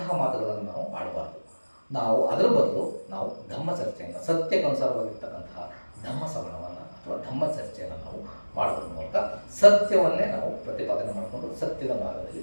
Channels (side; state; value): both; inverted; correlation -1.00